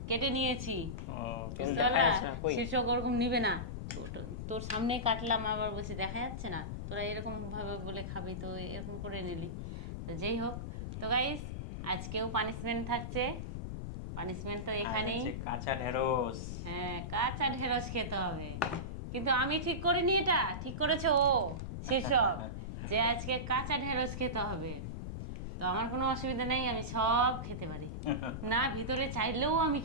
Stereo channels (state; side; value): noise; left; rumble, 6 dB below the sound